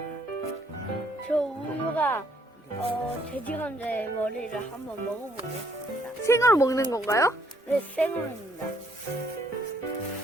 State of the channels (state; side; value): normal; both; correlation 0.68